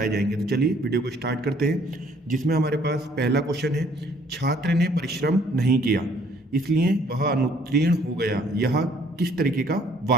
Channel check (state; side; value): normal; both; correlation 0.61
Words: जाएंगे। तो चलिए वीडियो को स्टार्ट करते हैं, जिसमें हमारे पास पहला क्वेश्चन है, छात्र ने परिश्रम नहीं किया इसलिए वह अनुत्तीर्ण हो गया, यह किस तरीके का